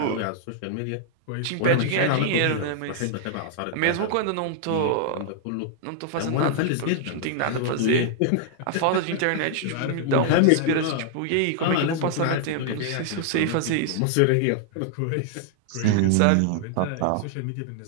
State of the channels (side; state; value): both; different; correlation -0.01